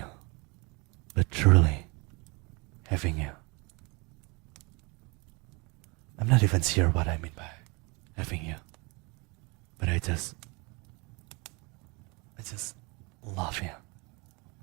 but truly having you. I'm not even sure what I mean by having you, but I just love you.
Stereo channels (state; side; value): quieter; left; 28.4 dB